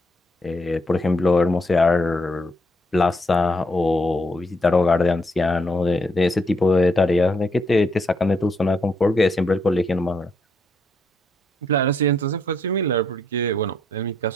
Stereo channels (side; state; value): both; normal; correlation 0.74